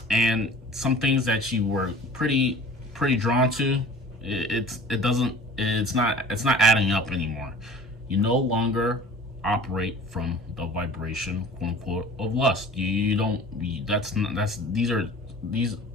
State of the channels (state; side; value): normal; both; correlation 0.44